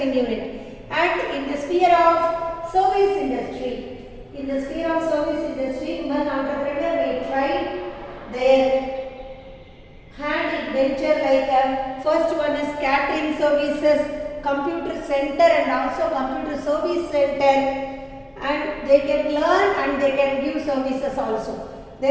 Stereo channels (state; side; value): identical; both; correlation 1.00